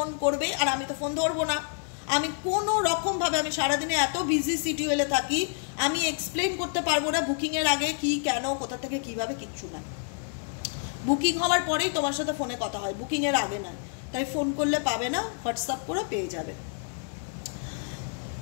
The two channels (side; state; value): right; silent; 59 dB below the other